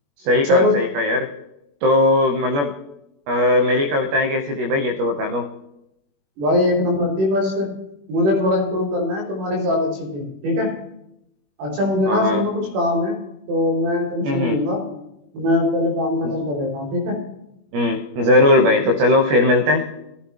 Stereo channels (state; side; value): late; left; 21 ms